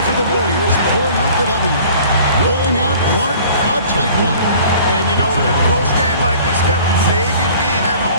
for the Warriors, pulling out the W. Rolling out Clark, a tight one. And, you know, in a close game like this, Kevin, maybe being at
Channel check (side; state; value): both; inverted; correlation -0.49